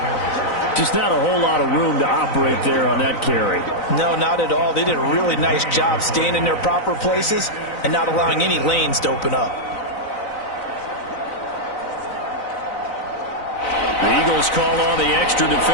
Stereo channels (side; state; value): right; late; 4.0 ms